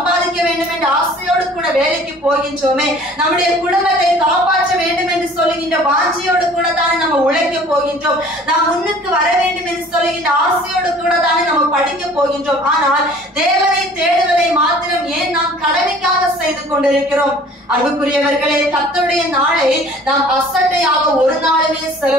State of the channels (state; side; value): normal; both; correlation 0.50